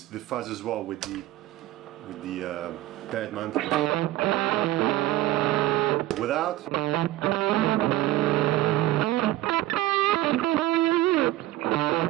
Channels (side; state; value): left; quieter; 15.8 dB